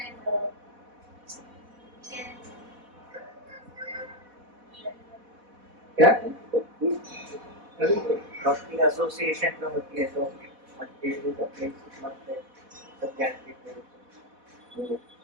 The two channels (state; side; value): late; left; 4.1 ms